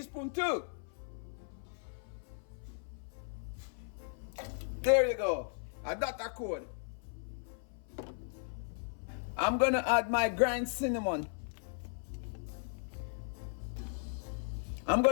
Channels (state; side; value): silent; right; 53 dB below the other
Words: too. There you go. I got that code. I'm gonna add my ground cinnamon. I'm